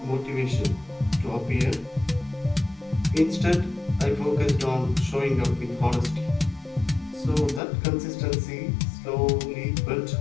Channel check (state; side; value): drops out; right; at 7.6 s